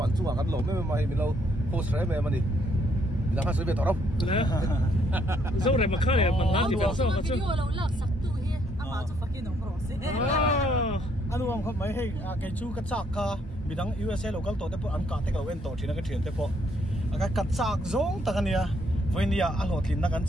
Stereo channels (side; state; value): both; normal; correlation 0.70